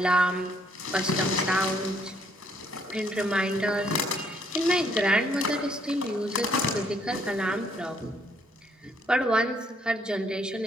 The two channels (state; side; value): normal; both; correlation 0.67